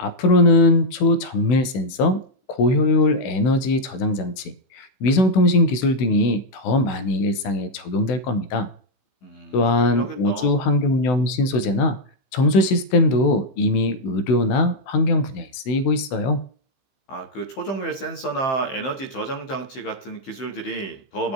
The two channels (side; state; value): right; late; 16 ms